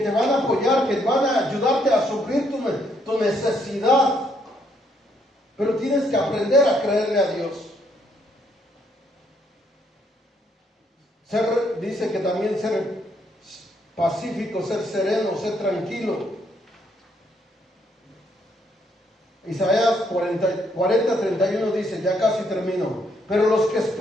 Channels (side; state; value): both; normal; correlation 0.72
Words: van a apoyar, que van a ayudarte a suplir tu necesidad. Pero tienes que aprender a creerle a Dios. Dice que también ser pacífico, ser sereno, ser tranquilo. Isaías 40:31 dice, ya casi termino, pero los que